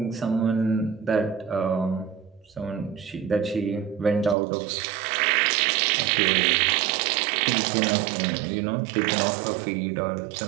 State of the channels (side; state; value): left; drops out; at 4.4 s